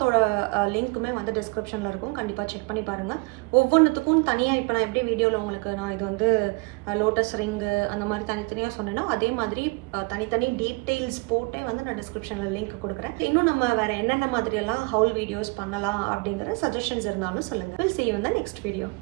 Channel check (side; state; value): left; quieter; 28.5 dB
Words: லிங்க்குமே வந்து டிஸ்கிரிப்ஷனில் இருக்கும், கண்டிப்பாக செக் பண்ணி பாருங்கள். ஒவ்வொன்றுத்துக்கும் தனியாக இப்போ நான் எப்படி வீடியோவில் உங்களுக்கு நான் இது வந்து லோட்டஸ் ரிங்கு அந்த மாதிரி தனித்தனியாக சொன்னேன்னா அதே மாதிரி தனித்தனி டீட்டெயில்ஸ் போட்டே வந்து நான் டிஸ்கிரிப்ஷனில் லிங்க் கொடுக்குறேன். இன்னும் நம்ம வேறு என்னென்ன மாதிரியெல்லாம் ஹவுல் வீடியோஸ் பண்ணலாம் அப்படிங்கிற சஜஷன்ஸ் இருந்தாலும் சொல்லுங்கள். Will see you in the next video.